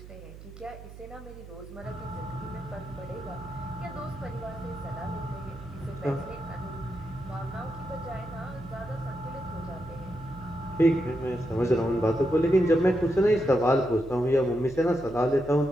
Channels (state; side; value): noise; right; hum, 15 dB below the sound